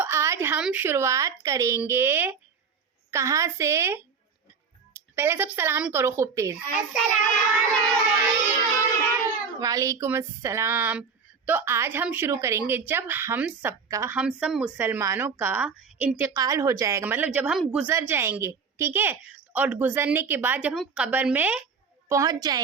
हम शुरुआत करेंगे कहाँ से? पहले सब सलाम करो खूब तेज। वालेकुम अस्सलाम। तो आज हम शुरू करेंगे जब हम सब मुसलमानों का इंतकाल हो जाएगा, मतलब जब हम गुजर जाएंगे, ठीक है। और गुजरने के बाद जब हम कब्र में पहुंच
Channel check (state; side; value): quieter; left; 5.7 dB